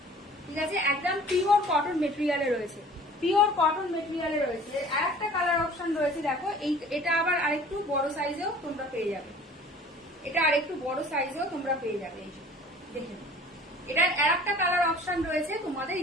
ঠিক আছে। একদম পিওর কটন মেটেরিয়ালে রয়েছে, পিওর কটন মেটেরিয়ালে রয়েছে। আর একটা কালার অপশন রয়েছে দেখো, এটা আবার আরেকটু বড় সাইজেও তোমরা পেয়ে যাবে, এটা আরেকটু বড় সাইজেও তোমরা পেয়ে যাবে। এই যে দেখে এটার আর একটা কালার অপশন রয়েছে তোমাদের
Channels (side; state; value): both; normal; correlation 0.48